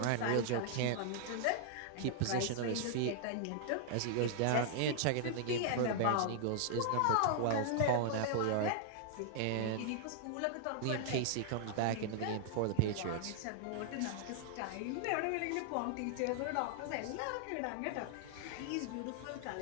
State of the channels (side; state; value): both; different; correlation -0.01